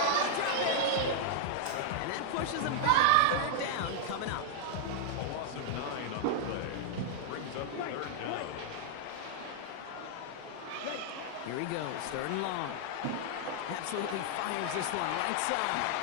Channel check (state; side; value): different; both; correlation -0.01